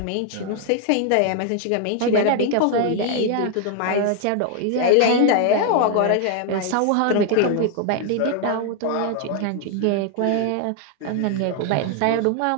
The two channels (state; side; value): different; both; correlation 0.00